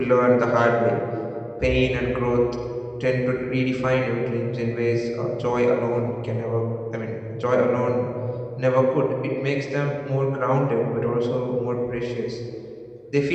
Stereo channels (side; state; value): both; identical; correlation 1.00